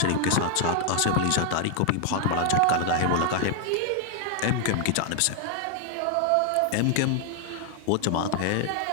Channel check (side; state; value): both; different; correlation 0.00